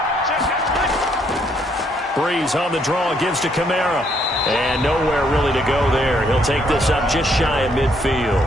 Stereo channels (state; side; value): normal; both; correlation 0.70